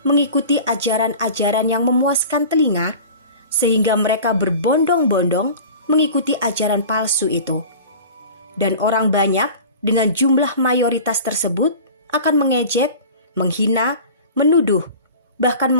mengikuti ajaran-ajaran yang memuaskan telinga, sehingga mereka berbondong-bondong mengikuti ajaran palsu itu. Dan orang banyak dengan jumlah mayoritas tersebut akan mengejek, menghina, menuduh, bahkan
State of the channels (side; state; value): both; inverted; correlation -0.39